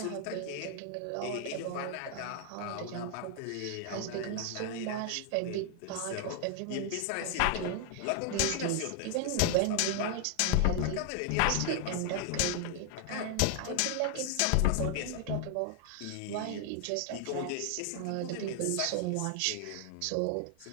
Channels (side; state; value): both; different; correlation 0.00